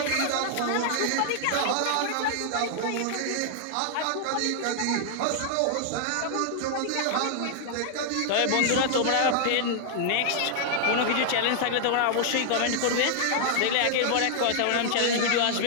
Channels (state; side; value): different; both; correlation -0.01